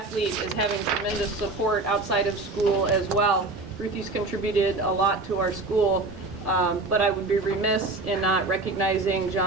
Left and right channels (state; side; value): quieter; left; 3.3 dB